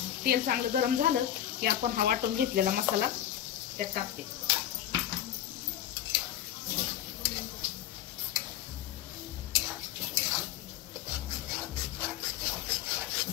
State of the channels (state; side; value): quieter; right; 11.5 dB